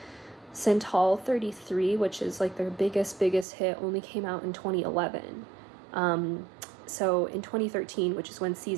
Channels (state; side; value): drops out; left; at 3.5 s